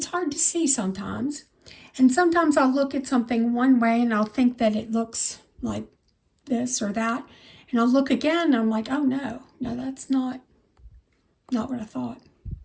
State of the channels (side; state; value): both; identical; correlation 1.00